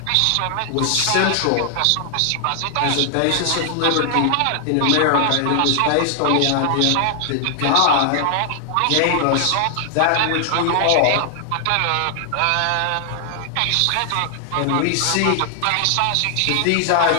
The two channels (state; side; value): different; both; correlation 0.00